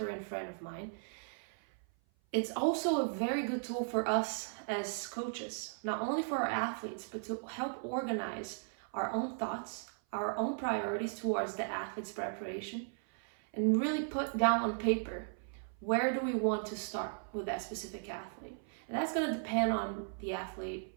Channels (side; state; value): left; silent; 53 dB below the other